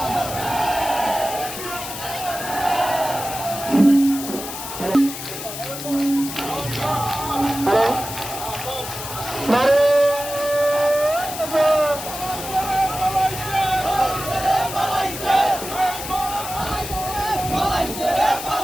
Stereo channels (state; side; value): noise; left; hiss, 8 dB below the sound